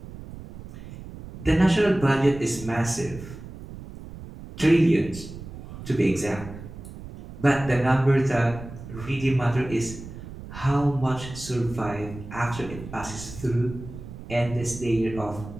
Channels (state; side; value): noise; right; rumble, 13 dB below the sound